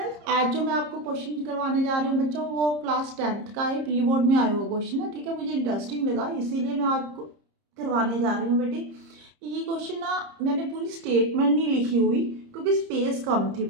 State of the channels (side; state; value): left; late; 30 ms